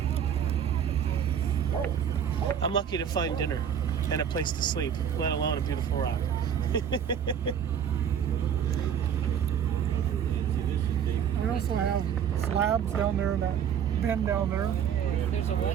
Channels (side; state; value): left; quieter; 8.4 dB